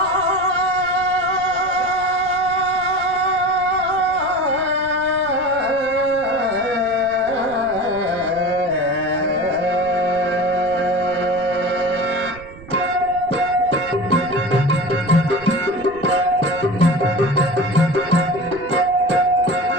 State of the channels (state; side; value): noise; right; rumble, 19 dB below the sound